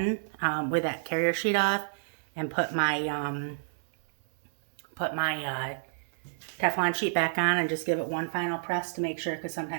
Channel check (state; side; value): silent; left; digital silence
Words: with that carrier sheet off and put my Teflon sheet back on and just give it one final press to make sure, because